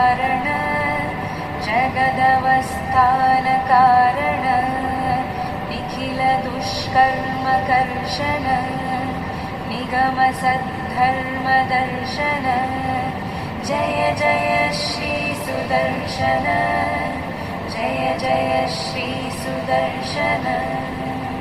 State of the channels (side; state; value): both; identical; correlation 1.00